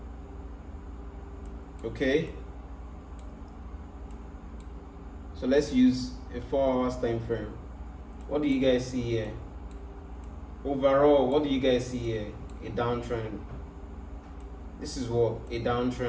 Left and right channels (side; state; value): both; identical; correlation 1.00